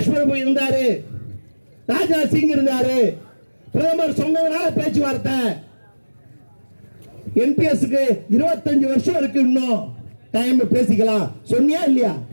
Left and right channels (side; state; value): both; inverted; correlation -1.00